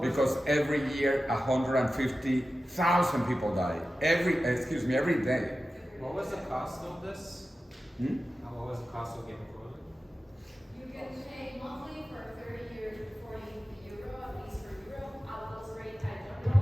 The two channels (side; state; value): both; normal; correlation 0.94